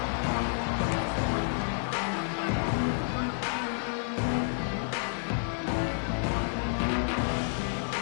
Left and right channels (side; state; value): right; silent; digital silence